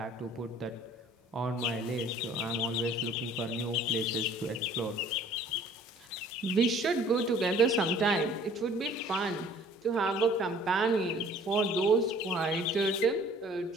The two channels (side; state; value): both; normal; correlation 0.53